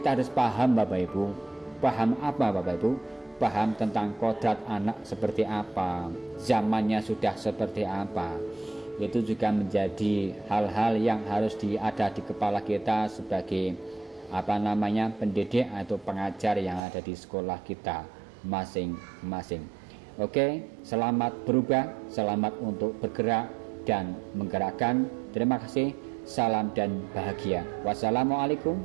harus paham Bapak Ibu. Paham apa Bapak Ibu? Paham tentang kodrat anak seperti apa, zamannya sudah seperti apa. Itu juga menjadi hal-hal yang harus ada di kepala kita sebagai pendidik atau pengajar yang ada di sekolah kita masing-masing. Oke, selamat berubah, selamat untuk bergerak dan menggerakkan. Terima kasih, salam dan bahagia. Wassalamualaikum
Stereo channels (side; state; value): left; drops out; at 16.8 s